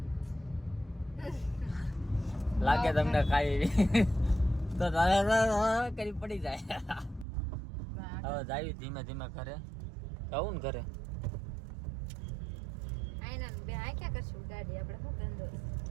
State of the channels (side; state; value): left; drops out; at 7.2 s